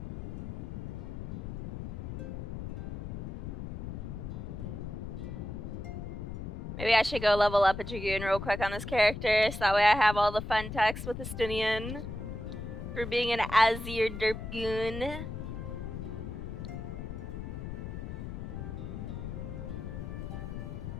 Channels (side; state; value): left; noise; rumble, 7 dB below the sound